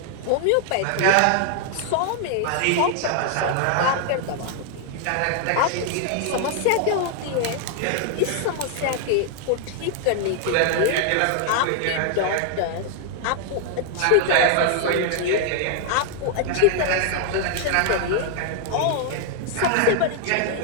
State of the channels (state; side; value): different; both; correlation 0.00